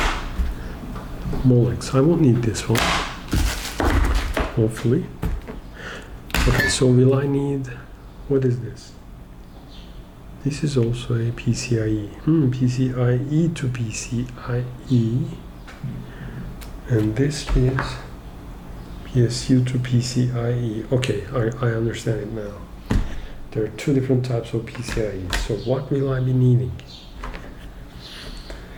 Molex. I won't need this one. Hopefully. Okay, so will I need... What is this? This is also a PCIe. PCIe to PCIe. And this is PSU to PCIe. Okay, I understand it now. There are 2 different types of PCIe. So what will I be needing?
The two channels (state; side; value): identical; both; correlation 1.00